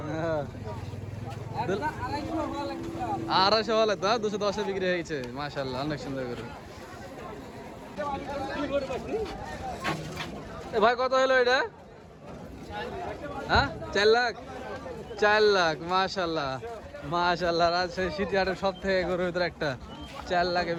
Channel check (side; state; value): both; identical; correlation 1.00